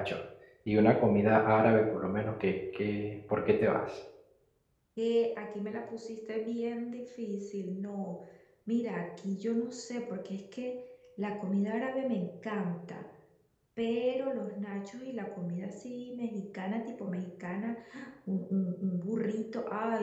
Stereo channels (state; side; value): identical; both; correlation 1.00